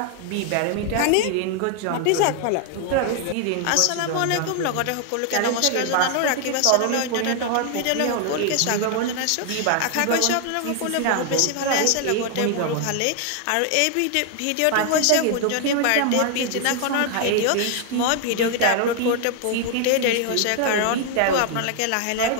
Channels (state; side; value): different; both; correlation 0.00